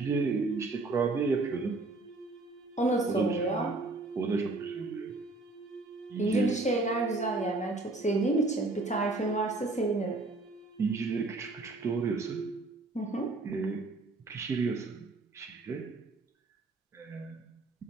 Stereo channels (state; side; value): quieter; left; 3.2 dB